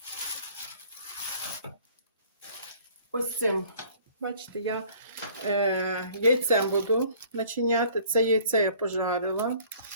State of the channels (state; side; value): inverted; both; correlation -0.54